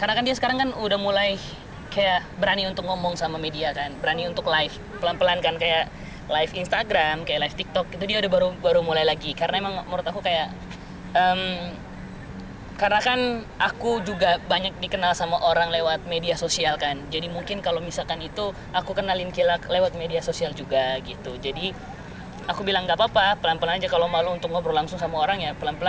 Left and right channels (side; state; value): both; identical; correlation 1.00